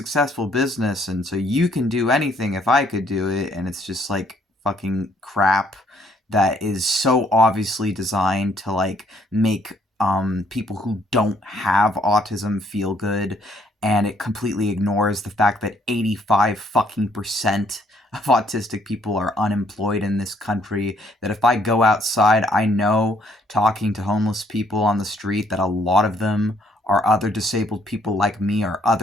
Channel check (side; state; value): both; normal; correlation 0.66